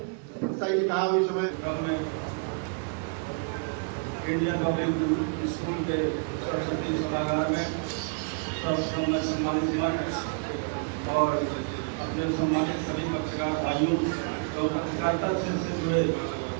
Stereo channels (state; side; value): quieter; left; 38.2 dB